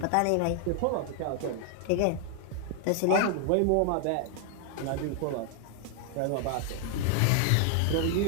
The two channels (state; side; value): different; both; correlation 0.00